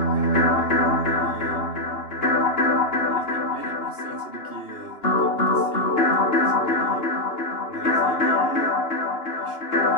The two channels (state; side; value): late; right; 2.9 ms